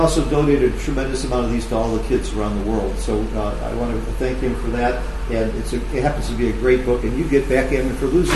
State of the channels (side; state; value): both; identical; correlation 1.00